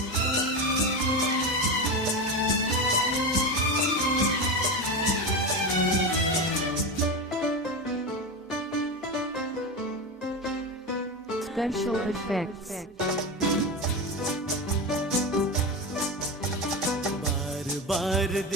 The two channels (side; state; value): both; normal; correlation 0.20